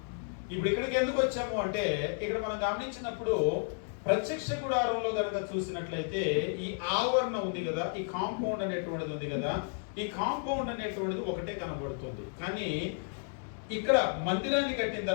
ఇప్పుడు ఇక్కడికి ఎందుకు వచ్చాము అంటే, ఇక్కడ మనం గమనించినప్పుడు ప్రత్యక్ష గుడారంలో కనుక చూసినట్లయితే ఈ ఆవరణ ఉంది కదా, ఈ కాంపౌండ్ అనేటువంటిది ఉంది కదా, ఈ కాంపౌండ్ అనేటువంటిది ఒకటే కనబడుతుంది. కానీ ఇక్కడ మందిరాన్ని కట్టిన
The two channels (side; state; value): right; silent; 56 dB below the other